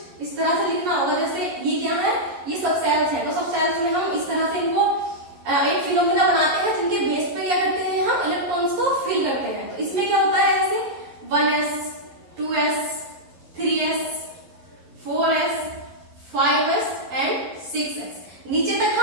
इस तरह से लिखना होगा। जैसे ये क्या है, ये सब सेल्स है, तो सब सेल्स में हम इस तरह से इनको एक फिनोमिना बना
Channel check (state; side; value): late; left; 11 ms